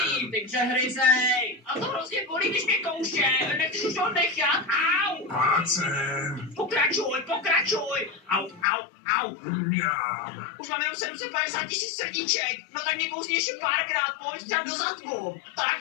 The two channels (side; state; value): right; drops out; at 8.7 s